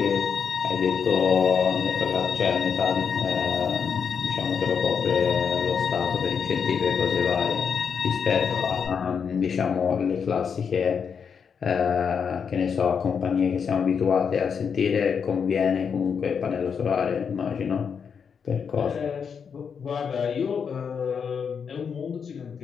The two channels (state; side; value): quieter; right; 6.6 dB